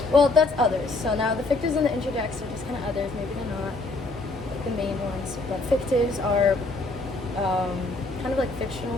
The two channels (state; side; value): quieter; right; 3.2 dB